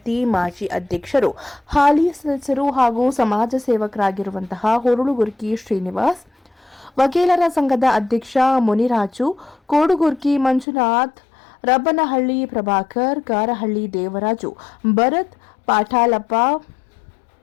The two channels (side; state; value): right; drops out; at 10.7 s